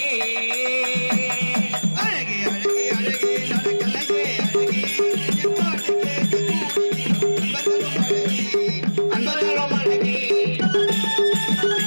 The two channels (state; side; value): inverted; both; correlation -1.00